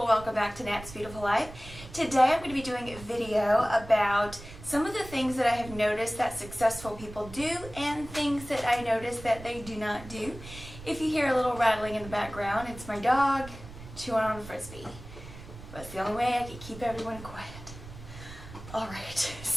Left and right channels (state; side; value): noise; right; rumble, 15 dB below the sound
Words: welcome back to Nat's Beautiful Life. Today I'm going to be doing a video about some of the things that I have noticed that successful people do and things that I notice that they do not do. If you hear a little rattling in the background, it's my dog chewing on a Frisbee. That's the only way I can keep everyone quiet. Alright,